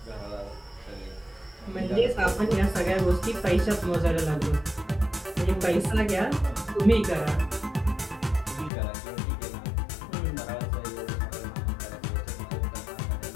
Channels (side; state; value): right; drops out; at 8.7 s